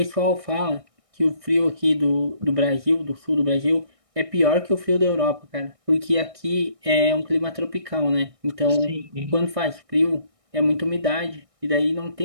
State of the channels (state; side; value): late; left; 1.6 ms